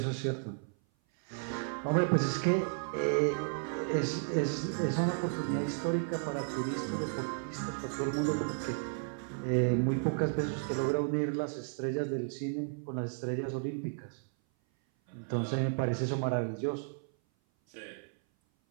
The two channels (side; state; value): left; silent; 55 dB below the other